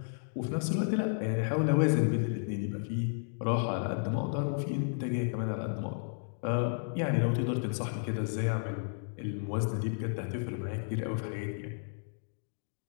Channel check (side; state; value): right; silent; digital silence